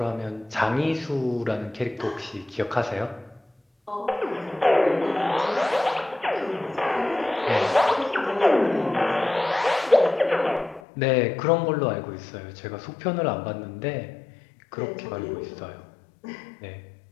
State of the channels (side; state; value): right; drops out; at 10.8 s